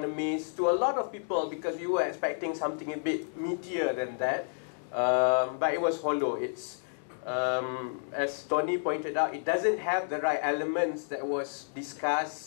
to a lot of people, because we were expecting something a bit meatier than that. But it was hollow. It's, as Tony pointed out, it doesn't have the right elements that was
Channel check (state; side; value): silent; right; digital silence